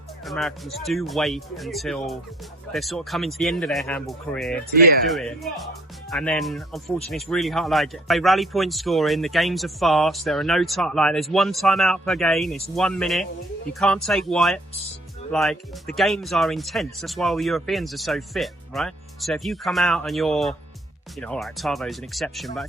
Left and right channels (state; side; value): normal; both; correlation 0.60